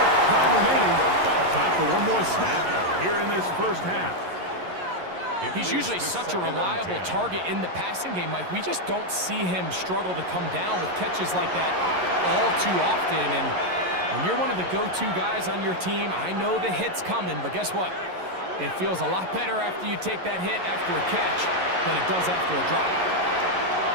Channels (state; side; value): late; left; 11 ms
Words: time remaining. Time for one more snap here in this first half. He's usually such a reliable target in the passing game, Mike. We just don't see him struggle to come down with catches like that all too often. And when you're one of the go-to guys on your team, I know the hit's coming, but guess what? It feels a lot better after you take that hit after a catch than it does after a drop.